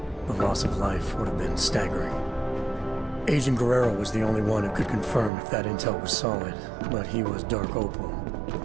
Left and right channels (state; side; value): drops out; left; at 5.3 s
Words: the loss of life would have been staggering. Agent Guerrero was the only one who could confirm if that intel was solid, but he was Dark Opal,